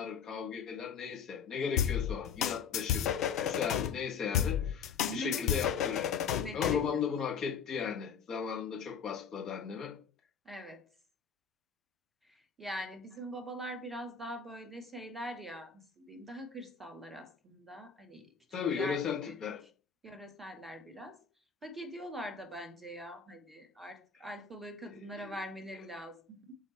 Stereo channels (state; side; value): quieter; right; 6.6 dB